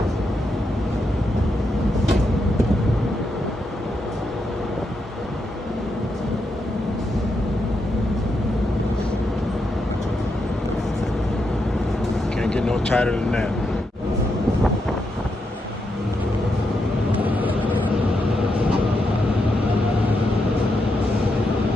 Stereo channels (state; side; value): normal; both; correlation 0.83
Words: Can't get no tighter than that.